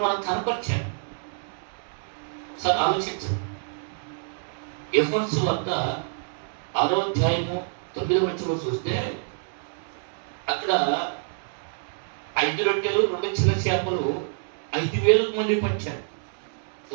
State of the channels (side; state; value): left; silent; digital silence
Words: మనకు కనపరిచాడు. ఒకసారి ఆలోచించండి. యోహాను సువార్త 6వ అధ్యాయము 9వ వచనం చూస్తే అక్కడ ఆయన 5 రొట్టెలు 2 చిన్న చేపలు 5,000 మంది పంచాడు.